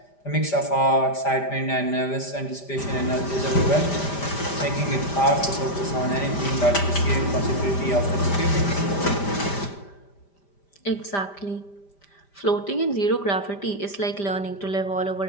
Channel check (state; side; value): late; right; 5.1 ms